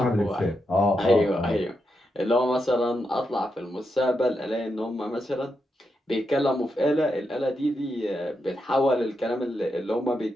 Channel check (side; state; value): both; normal; correlation 0.85